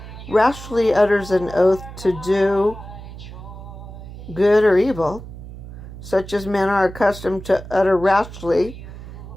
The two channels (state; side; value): noise; right; hum, 13 dB below the sound